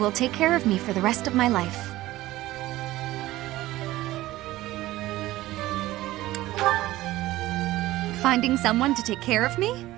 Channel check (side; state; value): left; quieter; 16.7 dB